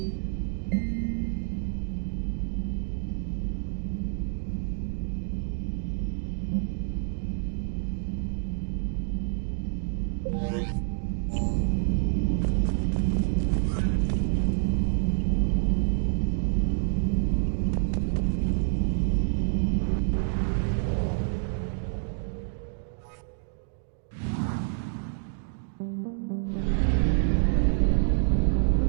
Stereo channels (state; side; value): silent; left; digital silence